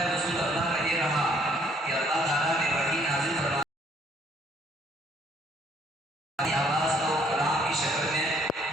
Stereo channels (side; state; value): both; normal; correlation 0.64